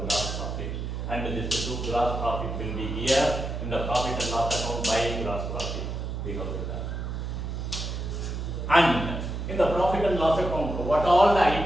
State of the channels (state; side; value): noise; right; hum, 4 dB below the sound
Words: gross profit. And this two gross profit will be here in the profit and loss account by gross profit. We have written. And in the profit and loss account, what all the